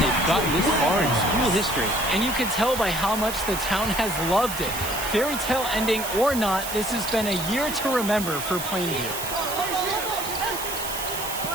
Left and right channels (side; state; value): right; noise; hiss, 7 dB below the sound